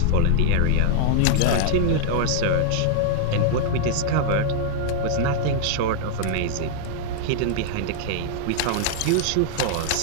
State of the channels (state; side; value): different; both; correlation -0.01